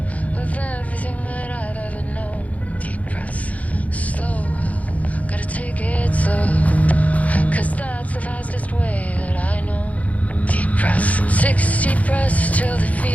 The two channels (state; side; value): late; right; 0.069 ms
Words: of everything that I've ever known. Deep breaths, slow, gotta take it slow, 'cause that's the fastest way that I know. Deep breaths, 6 deep breaths till the